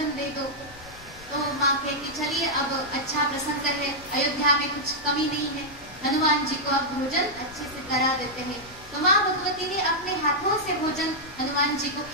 दे दो। तो माँ कहती चलिए अब अच्छा प्रसंग है, अयोध्या में कुछ कमी नहीं है, हनुमान जी को अब भोजन अच्छे से करा देते हैं। तो माँ भगवती ने अपने हाथों से भोजन हनुमान जी को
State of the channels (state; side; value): noise; left; rumble, 20 dB below the sound